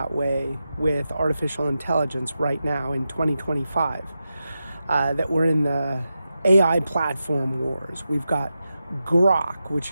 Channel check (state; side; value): inverted; both; correlation -0.90